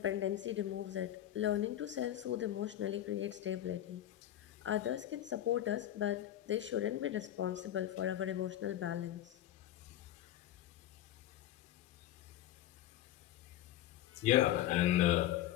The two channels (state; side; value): quieter; right; 12.6 dB